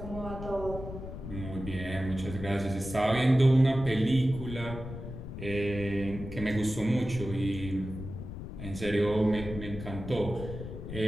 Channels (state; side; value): noise; left; rumble, 9 dB below the sound